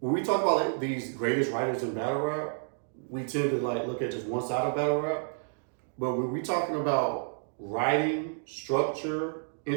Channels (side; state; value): left; silent; 58 dB below the other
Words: when we talk about like these greatest writers in battle rap, we tend to like look at just one side of battle rap. But when we talking about writing, structure,